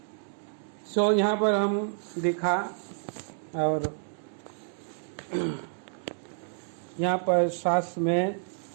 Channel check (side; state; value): left; silent; 58 dB below the other